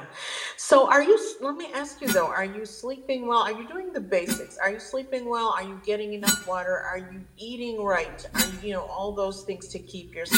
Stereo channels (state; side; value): identical; both; correlation 1.00